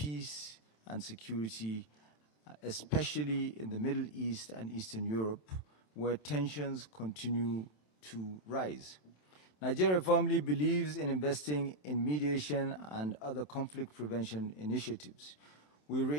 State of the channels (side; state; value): right; late; 27 ms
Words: and security, especially in the Middle East and Eastern Europe, where tensions continue to rise. Nigeria firmly believes in investing in mediation and other conflict prevention initiatives. We